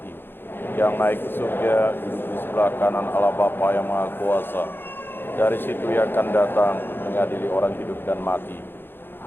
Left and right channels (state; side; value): late; right; 0.10 ms